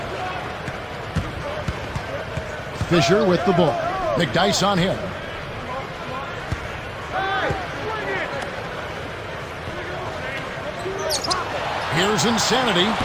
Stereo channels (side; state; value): both; identical; correlation 1.00